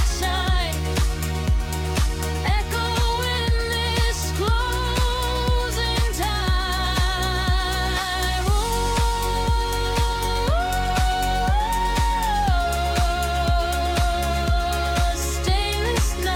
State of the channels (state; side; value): identical; both; correlation 1.00